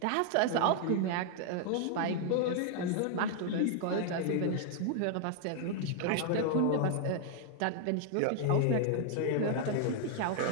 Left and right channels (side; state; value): both; different; correlation 0.00